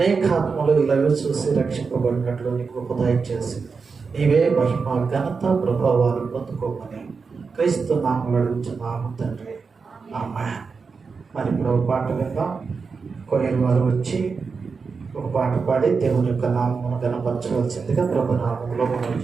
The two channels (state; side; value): quieter; left; 5.0 dB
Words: ఆత్మలు ఇలాగ చూసి రక్షింపబడినట్లు నీ కృప దయచేసి నీవే మహిమ, ఘనత, ప్రభావాలు పొందుకోమని క్రీస్తు నామములో అడుగుచున్నాము తండ్రి, ఆమేన్. మరి ఇప్పుడు ఒక పాట విందాం. కొయ్యలు వారు వచ్చి ఒక పాట పాడి దేవుని యొక్క నామమును గణపరచవలసిందిగా ప్రభు నామములో మనం